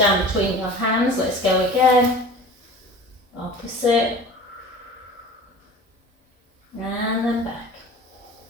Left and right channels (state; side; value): normal; both; correlation 0.40